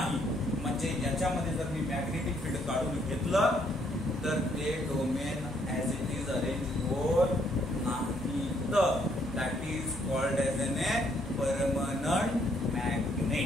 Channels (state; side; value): normal; both; correlation 0.70